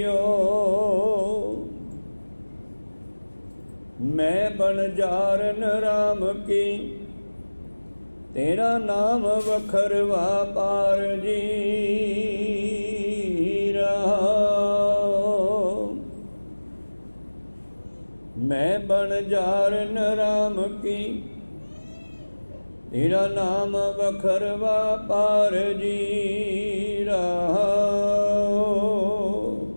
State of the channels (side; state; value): both; inverted; correlation -1.00